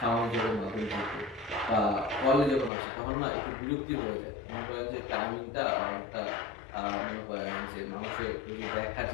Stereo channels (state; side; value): drops out; right; at 2.7 s